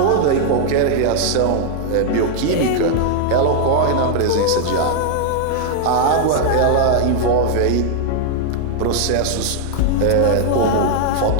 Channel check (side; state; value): both; different; correlation -0.01